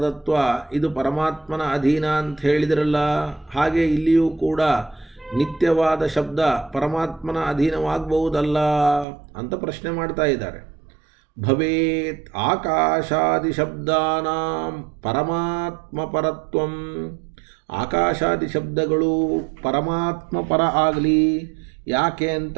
ಇದು ಪರಮಾತ್ಮನ ಅಧೀನ ಅಂತ ಹೇಳಿದ್ರಲ್ಲ. ಹಾಗೆ ಇಲ್ಲಿಯೂ ಕೂಡ ನಿತ್ಯವಾದ ಶಬ್ದ ಪರಮಾತ್ಮನ ಅಧೀನವಾಗಬಹುದಲ್ಲ ಅಂತ ಪ್ರಶ್ನೆ ಮಾಡ್ತಾ ಇದ್ದಾರೆ. ಭವೇತ್ ಆಕಾಶಾದಿ ಶಬ್ದಾನಾಂ ಪರಮಾತ್ಮ ಪರತ್ವಂ. ಆಕಾಶಾದಿ ಶಬ್ದಗಳು ಪರಮಾತ್ಮ ಪರ ಆಗಲಿ. ಯಾಕೆ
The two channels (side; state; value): left; drops out; at 9.1 s